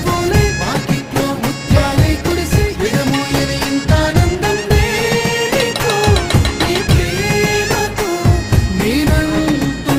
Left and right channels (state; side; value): identical; both; correlation 1.00